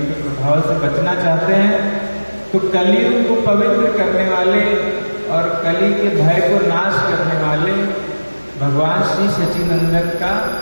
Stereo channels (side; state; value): both; inverted; correlation -1.00